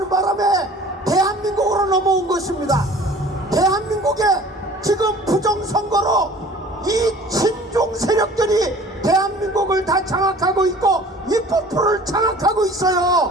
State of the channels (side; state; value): both; normal; correlation 0.47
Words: 바람에 대한민국으로 넘어온 것입니다. 대한민국에 지금 부정선거로 이 친중 세력들이 대한민국을 다 장악하고 있고 입법부를 장악하고